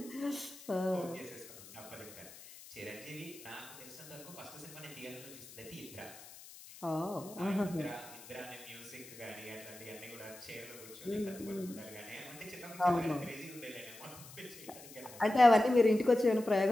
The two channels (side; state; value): left; noise; hiss, 17 dB below the sound